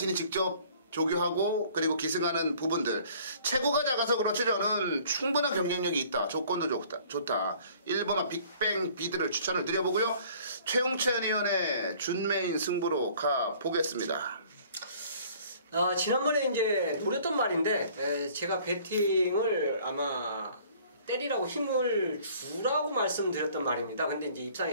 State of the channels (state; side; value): inverted; both; correlation -0.54